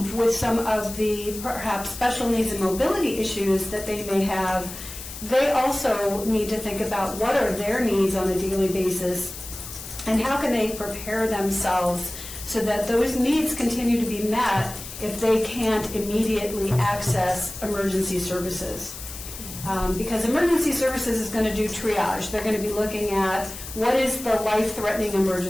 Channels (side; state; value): left; noise; hiss, 11 dB below the sound